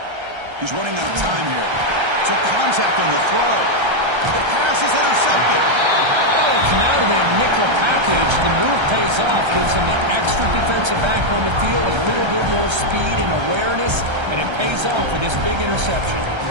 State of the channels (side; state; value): left; late; 1.3 ms